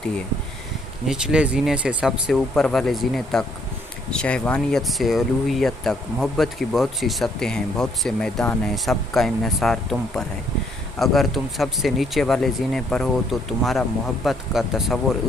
है, निचले जीने से सबसे ऊपर वाले जीने तक, शहवानियत से उलूहियत तक। मोहब्बत की बहुत सी सतहें हैं, बहुत से मैदान हैं, सबका इन्हिसार तुम पर है। अगर तुम सबसे नीचे वाले जीने पर हो तो तुम्हारा मोहब्बत का तसव्वुर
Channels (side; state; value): both; normal; correlation 0.68